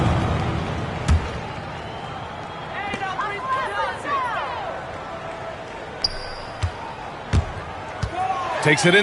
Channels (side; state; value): both; identical; correlation 1.00